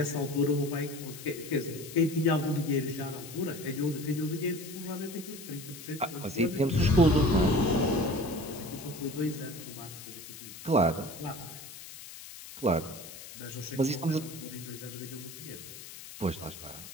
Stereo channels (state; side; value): noise; left; hiss, 14 dB below the sound